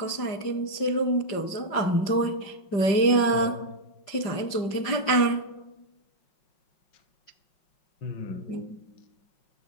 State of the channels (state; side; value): late; right; 5.1 ms